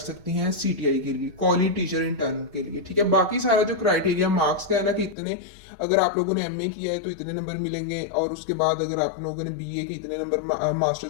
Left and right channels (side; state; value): right; drops out; at 5.2 s